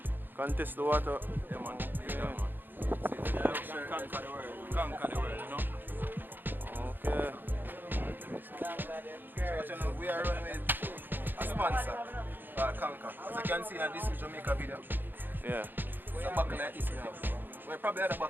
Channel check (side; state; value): left; late; 0.093 ms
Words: Contest the water. Yeah, man. Yeah. Conquer the world. Conquer the world, you know? Okay. So, you know, we are running with a sponsor called Conquer. As you can see, this is Jamaica video. Yeah. It's a buckle like this now. We probably had a